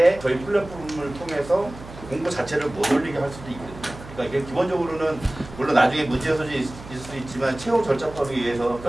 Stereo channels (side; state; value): right; noise; hum, 16 dB below the sound